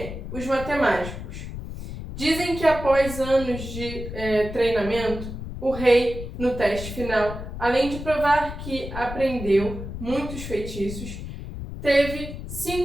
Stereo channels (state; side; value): noise; left; rumble, 9 dB below the sound